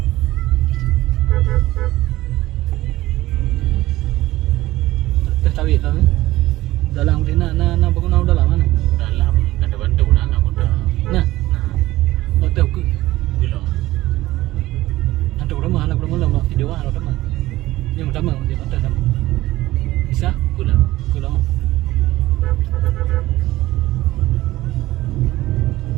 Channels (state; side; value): quieter; left; 16.9 dB